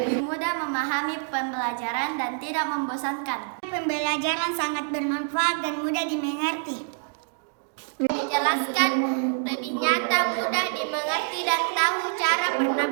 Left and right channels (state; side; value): silent; left; digital silence